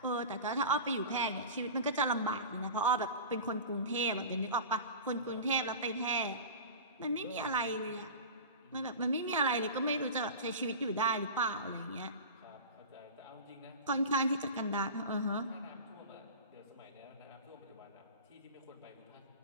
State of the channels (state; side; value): inverted; both; correlation -0.32